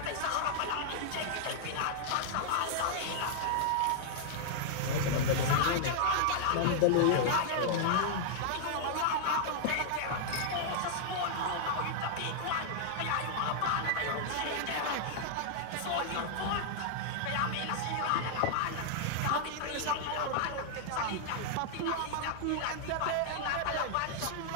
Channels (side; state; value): both; different; correlation -0.01